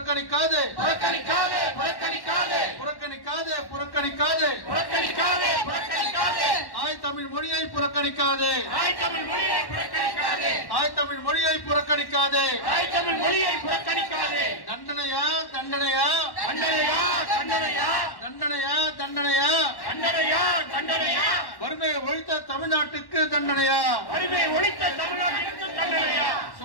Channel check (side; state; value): right; late; 1.1 ms